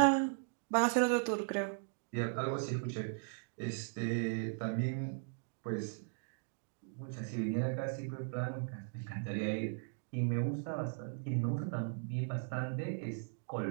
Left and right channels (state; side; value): silent; left; digital silence